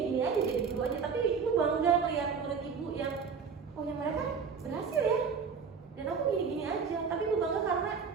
aja jadi guru aja, tapi ibu bangga melihat murid ibu yang oh yang mereka berhasil ya, dan aku gini-gini aja. Tapi ibu bangga karena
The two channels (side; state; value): left; quieter; 5.9 dB